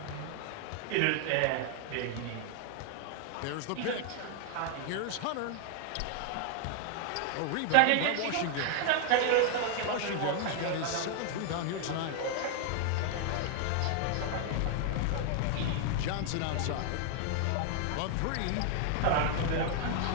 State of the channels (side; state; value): both; different; correlation 0.00